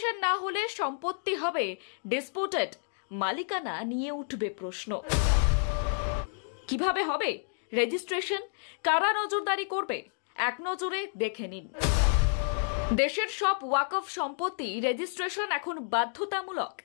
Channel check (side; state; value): right; silent; digital silence